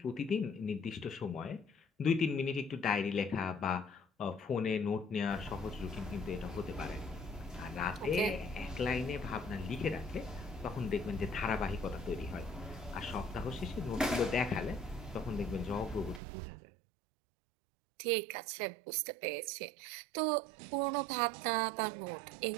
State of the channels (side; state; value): left; drops out; at 16.2 s